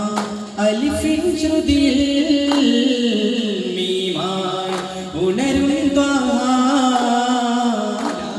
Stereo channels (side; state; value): both; identical; correlation 1.00